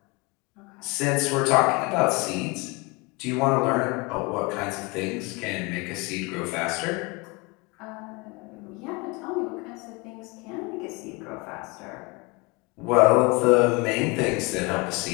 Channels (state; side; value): quieter; right; 26.7 dB